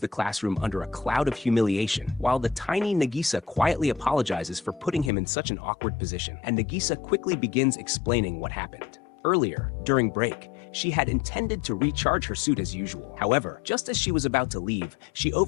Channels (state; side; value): drops out; right; at 5.1 s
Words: classroom under a cloud of humiliation, while the tiny Nagisa quietly apologizes for putting him in such an awkward position, and Nagisa quickly begins explaining what happened. Earlier, during break, she had intended to recharge her suit as usual. However, just as she was about to leave, she